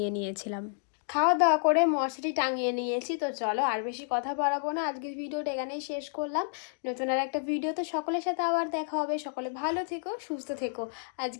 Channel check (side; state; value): right; silent; digital silence